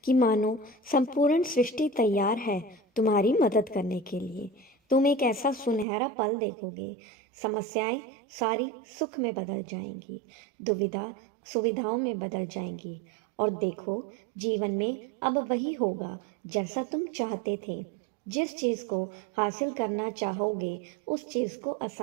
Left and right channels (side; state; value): left; drops out; at 5.9 s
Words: कि मानो संपूर्ण सृष्टि तैयार है तुम्हारी मदद करने के लिए। तुम एक ऐसा सुनहरा पल देखोगे। समस्याएं सारी सुख में बदल जाएंगी, दुविधा सुविधाओं में बदल जाएंगी। और देखो, जीवन में अब वही होगा जैसा तुम चाहते थे। जिस चीज़ को हासिल करना चाहोगे, उस चीज़ को